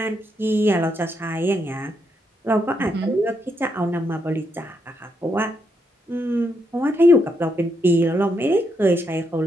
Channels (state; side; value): normal; both; correlation 0.79